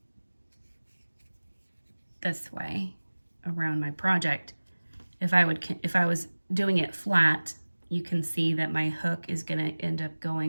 this way around my project. If I was doing it flat, you can see that my hook is going to end up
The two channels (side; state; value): both; inverted; correlation -1.00